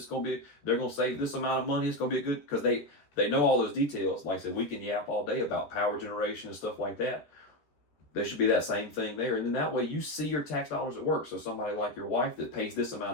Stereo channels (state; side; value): late; right; 13 ms